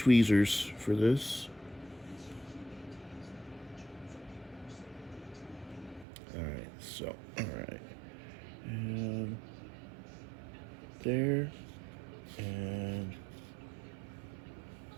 for this. All right, so all right, and there, and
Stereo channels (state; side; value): drops out; left; at 6.1 s